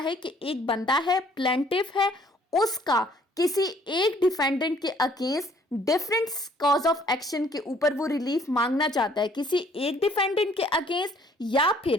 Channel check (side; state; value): both; normal; correlation 0.60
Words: कि एक बंदा है, प्लेंटिफ है, उसका किसी एक डिफेंडेंट के against different cause of action के ऊपर वो रिलीफ मांगना चाहता है, किसी एक डिफेंडेंट के अगेंस्ट, या